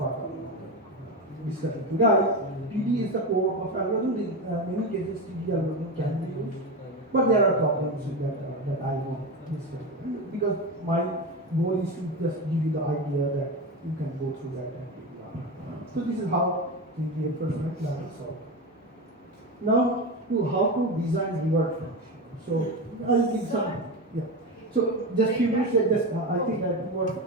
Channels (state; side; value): normal; both; correlation 0.19